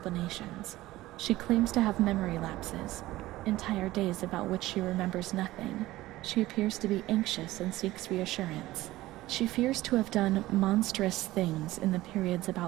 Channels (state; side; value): quieter; left; 17.0 dB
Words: She claims to have memory lapses, entire days about which she remembers nothing. She appears to be anxious and seeks reassurance. She fears to have done monstrous things in the periods